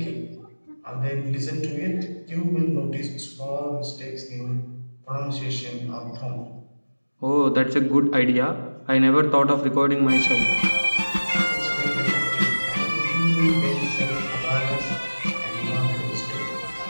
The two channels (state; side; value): inverted; both; correlation -1.00